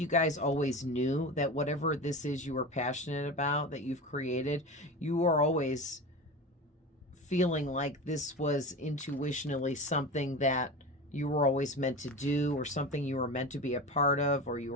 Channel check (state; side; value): normal; both; correlation 0.28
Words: guys always knew that whatever this is you were passionate about, that you've created, you are always feeling like this was intuitionally something that you were always meant to do, or something you were meant to be a part of, or you